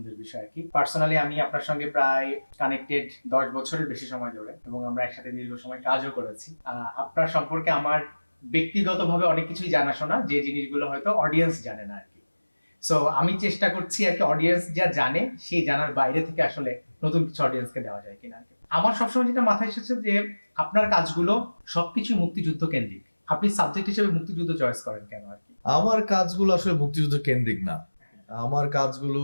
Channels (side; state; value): both; inverted; correlation -1.00